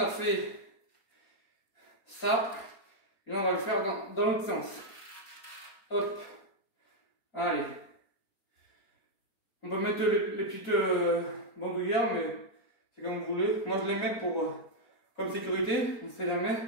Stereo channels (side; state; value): right; late; 4.3 ms